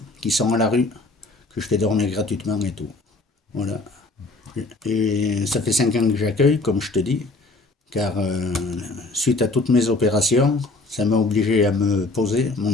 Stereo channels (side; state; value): right; quieter; 3.2 dB